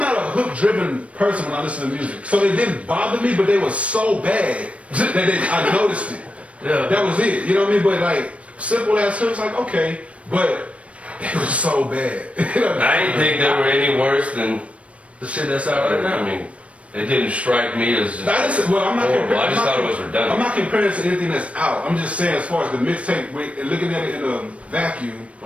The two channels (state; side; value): late; left; 0.063 ms